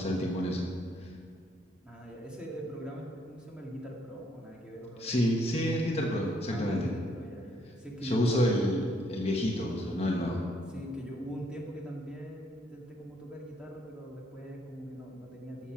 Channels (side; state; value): both; normal; correlation 0.70